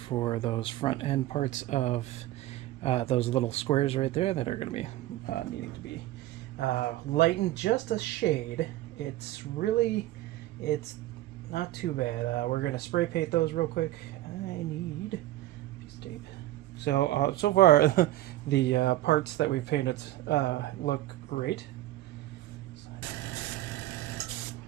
those front end parts of those little squares right there that are going to be needing to be lightened just a shade. It's not too bad. We're going to spray paint those real quick. I need a piece of tape. So so far the parts that we've painted look great.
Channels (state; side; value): quieter; left; 15.4 dB